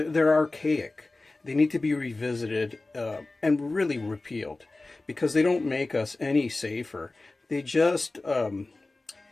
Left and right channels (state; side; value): quieter; right; 3.2 dB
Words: archaic. They need to be revisited and really repealed, because they don't make us any safer. They just